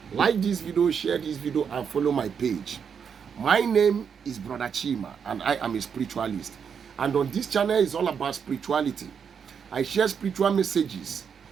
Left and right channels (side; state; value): left; quieter; 7.0 dB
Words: Like this video, share this video, and follow my page. My name is Brother Chima and I am a spiritualist, and on this channel is all about spirituality. I share spiritual messages